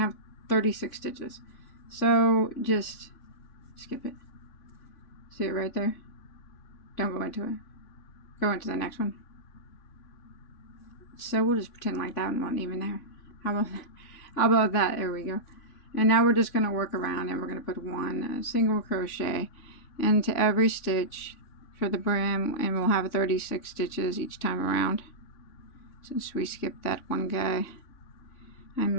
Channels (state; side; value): late; right; 3.5 ms